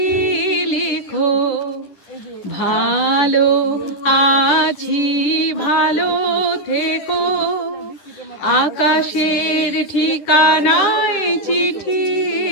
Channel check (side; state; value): right; late; 10 ms